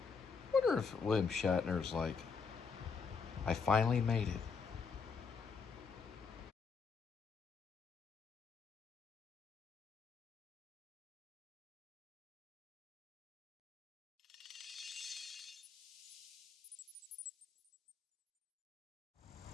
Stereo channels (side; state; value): right; quieter; 5.3 dB